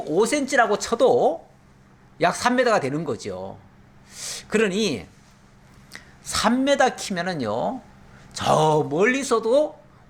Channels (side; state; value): both; identical; correlation 1.00